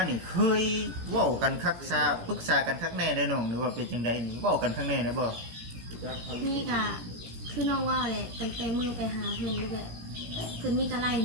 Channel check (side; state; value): left; late; 17 ms